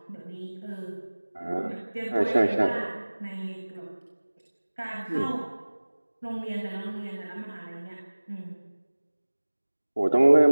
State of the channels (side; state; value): both; inverted; correlation -1.00